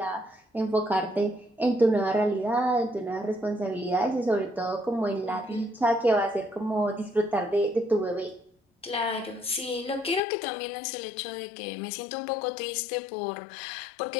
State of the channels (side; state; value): right; drops out; at 10.2 s